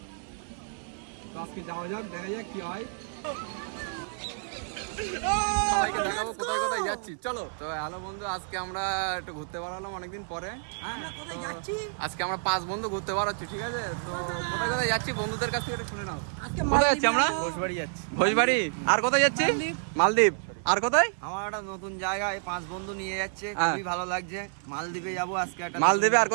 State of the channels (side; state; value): left; silent; 57 dB below the other